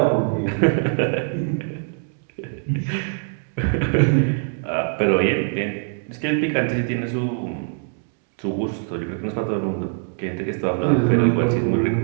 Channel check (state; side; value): silent; left; 64 dB below the other